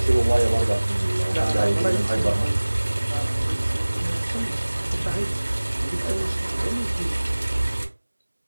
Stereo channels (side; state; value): both; inverted; correlation -1.00